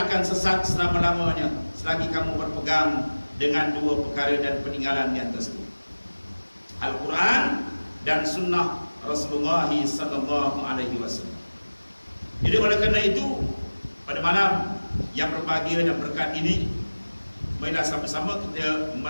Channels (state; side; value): inverted; both; correlation -1.00